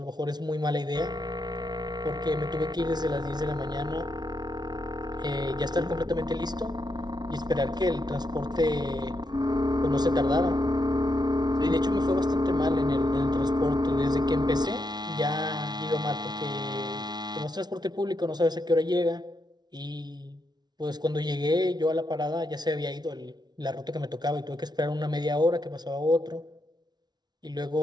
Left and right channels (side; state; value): left; late; 0.20 ms